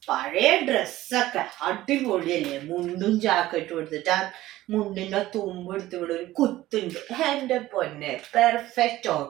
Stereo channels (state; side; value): quieter; left; 15.9 dB